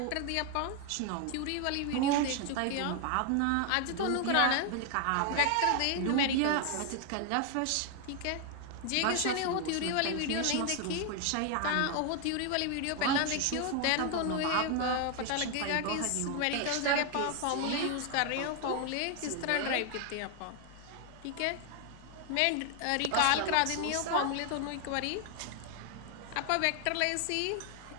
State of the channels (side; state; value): both; different; correlation 0.01